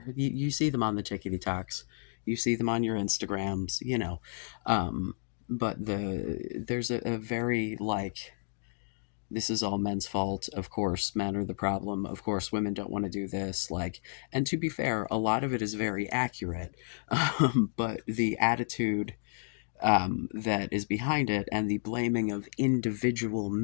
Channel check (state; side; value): silent; right; digital silence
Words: You see them on the tickety talks, you see them on your Instagrams, Um, but there's a very like, this is all men's fault. Of course, men are the problem. Of course, women don't want to do this. Like, and to be fair, a lot of it is very accurate. But the attitude that is behind it and the blaming of individual